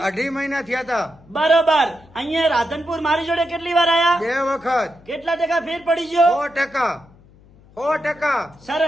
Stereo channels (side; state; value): left; noise; hum, 26 dB below the sound